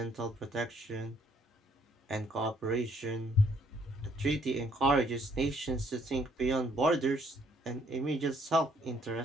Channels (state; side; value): normal; both; correlation 0.66